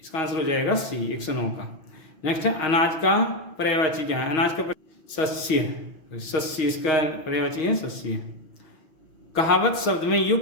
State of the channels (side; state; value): right; late; 6.0 ms